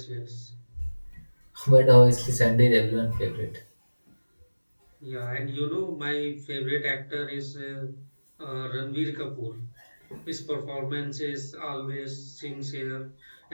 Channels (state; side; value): inverted; both; correlation -1.00